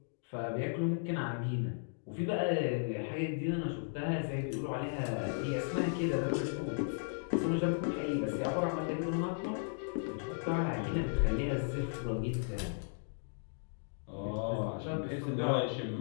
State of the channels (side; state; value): right; silent; digital silence